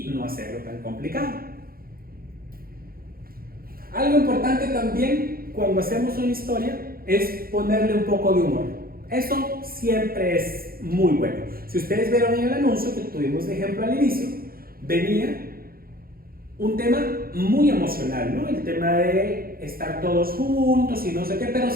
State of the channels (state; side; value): late; left; 0.43 ms